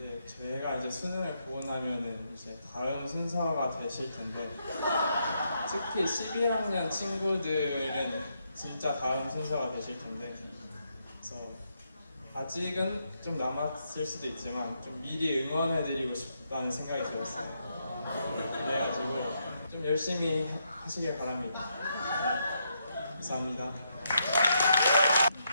제가 이제 수능을 보고 나면은 이제 다음 순서가 되실 텐데 특히 12학년 친구들은 진짜 다음 순서가 되실 텐데 그래서 아직은 좀 남았을 수도 있지만 좀 미리 응원해드리고 싶다는 생각이 들었어요. 그래가지고 좀 열심히 하시길 바랍니다. 감사합니다.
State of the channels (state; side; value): inverted; both; correlation -0.79